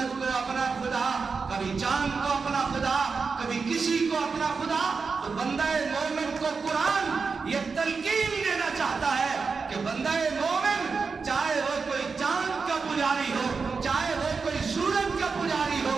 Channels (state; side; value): quieter; left; 4.9 dB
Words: کو اپنا خدا، کبھی چاند کو اپنا خدا، کبھی کسی کو اپنا خدا۔ تو بندہ مومن کو قرآن یہ تلقین دینا چاہتا ہے کہ بندہ مومن چاہے وہ کوئی چاند کا پجاری ہو، چاہے وہ کوئی سورج کا پجاری ہو،